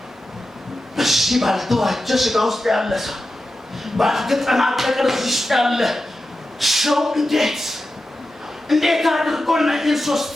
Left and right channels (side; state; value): both; normal; correlation 0.91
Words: በዚህ ባልተዋጀ ሥጋ ውስጥ ያለ ሰው፣ ባልተጠናቀቀ እዚህ ውስጥ ያለ ሰው እንዴት አድርጎ እነዚህን